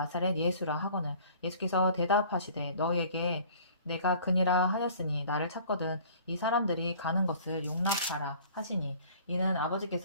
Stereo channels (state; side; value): inverted; both; correlation -0.50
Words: 예수라 하거늘 예수께서 대답하시되 너희에게 내가 그니라 하였으니 나를 찾거든 이 사람들이 가는 것을 용납하라 하시니 이는